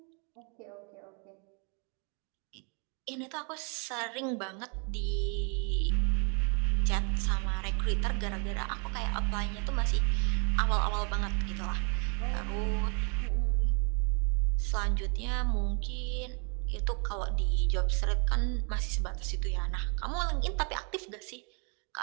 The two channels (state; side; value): quieter; left; 36.9 dB